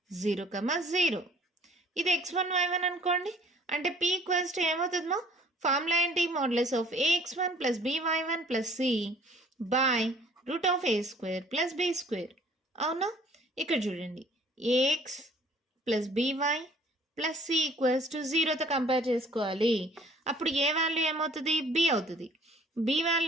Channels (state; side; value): normal; both; correlation 0.55